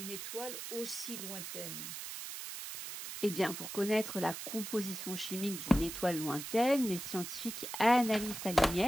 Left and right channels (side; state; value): right; noise; hiss, 8 dB below the sound